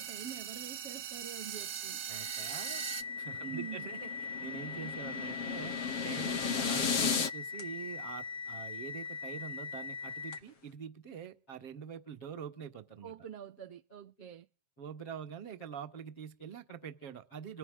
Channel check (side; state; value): right; late; 7.4 ms